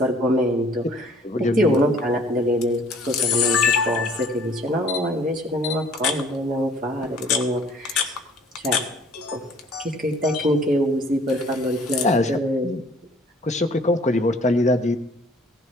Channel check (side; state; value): both; normal; correlation 0.55